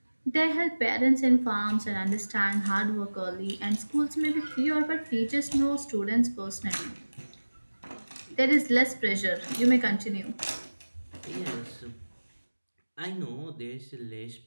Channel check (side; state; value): both; inverted; correlation -1.00